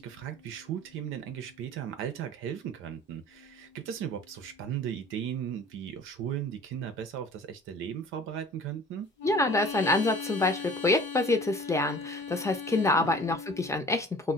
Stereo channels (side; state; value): both; normal; correlation 0.46